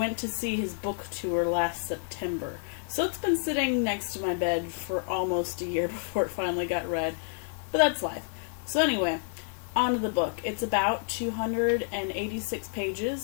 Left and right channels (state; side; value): silent; right; 58 dB below the other